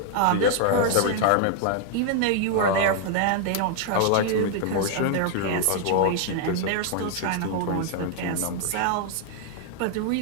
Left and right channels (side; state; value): both; different; correlation 0.00